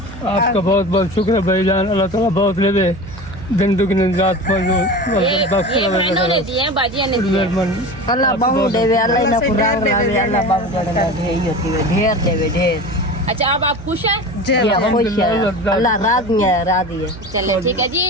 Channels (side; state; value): right; noise; hum, 16 dB below the sound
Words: आपका बहुत बहुत शुक्र भाईजान। अल्लाह ताला बहुत लेवे दिन दुगनी रात ये बहनों ने दिए हैं, बाजियां ने दिए हैं। अल्लाह बाबू देवे, अल्लाह ना कुरान लावे, अल्लाह बाबू जड़ना ढेर होती है, ढेर देवे ढेर। अच्छा अब आप खुश हैं? खुश है, अल्लाह राजी है, राजी है। चलिए ठीक है